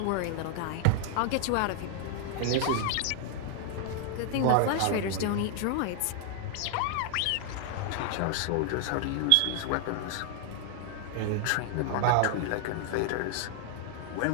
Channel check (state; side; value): different; both; correlation 0.00